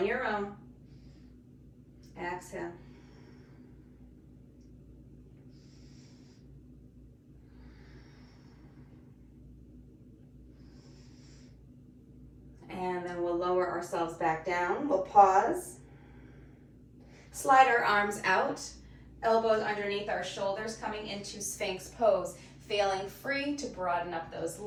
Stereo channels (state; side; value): identical; both; correlation 1.00